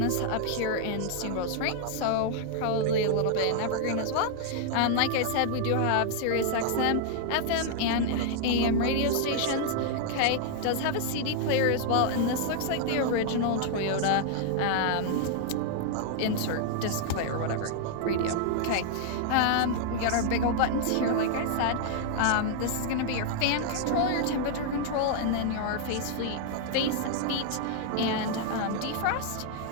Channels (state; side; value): different; both; correlation 0.00